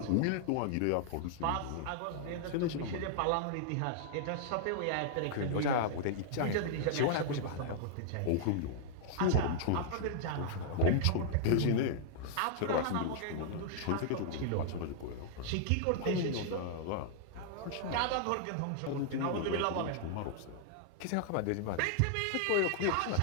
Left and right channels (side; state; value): both; different; correlation -0.01